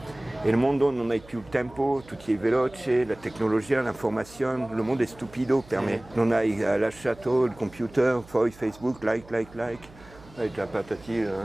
E il mondo non ha più il tempo, tutto è veloce, la tecnologia, l'informazione, il mondo è stupido per me. Non hai lasciato il computer, poi Facebook, like, hai già patati.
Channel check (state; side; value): noise; right; hum, 22 dB below the sound